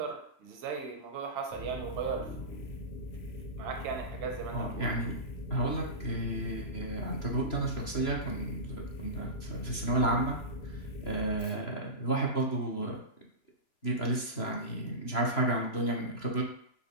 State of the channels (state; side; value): late; right; 3.0 ms